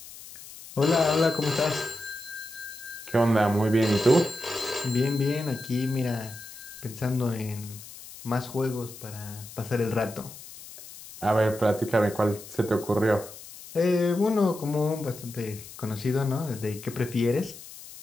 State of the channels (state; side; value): noise; left; hiss, 16 dB below the sound